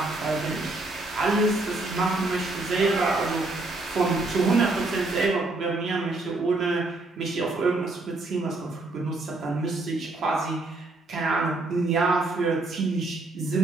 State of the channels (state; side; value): quieter; left; 3.0 dB